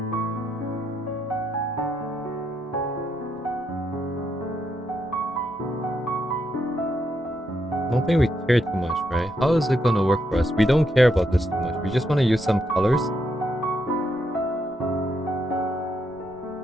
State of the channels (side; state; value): both; normal; correlation 0.79